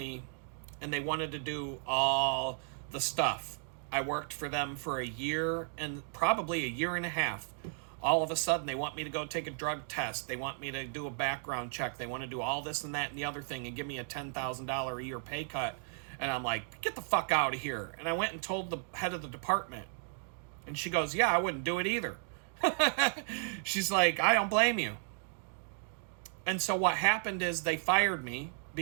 and they wanted to do all the stuff. I worked for them for a year and probably a year and a half. All of a sudden, they want me to go take a drug test. They want me to do a background check. They want to do all this and that and the other thing and give me a $10,000 a year pay cut. And I'm like, get the fuck out of here. And I went and told the head of the department. And she goes, yeah, I wouldn't do it either. She's like, I don't blame you. And so what happened is they fired me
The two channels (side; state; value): left; silent; 55 dB below the other